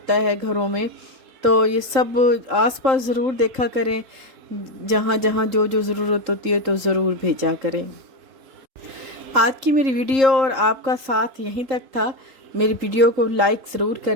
है घरों में। तो ये सब आसपास ज़रूर देखा करें, जहाँ जहाँ जो जो ज़रूरत होती है तो ज़रूर भेजा करें। आज की मेरी वीडियो और आपका साथ यहीं तक था। मेरी वीडियो को लाइक ज़रूर कर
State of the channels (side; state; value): left; late; 3.8 ms